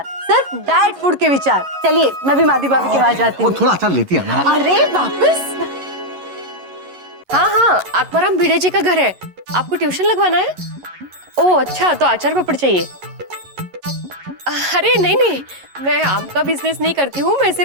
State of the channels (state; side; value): late; left; 11 ms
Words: सिर्फ डाइट फूड के विचार। चलिए, मैं भी माधवी भाभी के पास जाती हूँ। थोड़ा अचार लेती है ना? अरे वापस? हाँ, आत्माराम भिड़े जी का घर है, आपको ट्यूशन लगवाना है? ओह अच्छा, तो अचार पापड़ चाहिए। अरे नहीं नहीं, मैं आम का बिजनेस नहीं करती हूँ, मैं